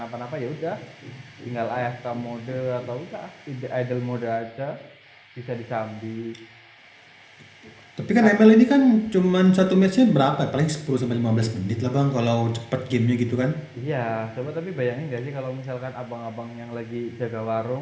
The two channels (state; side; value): identical; both; correlation 1.00